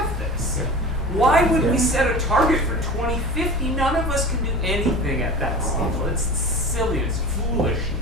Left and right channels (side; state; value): both; normal; correlation 0.35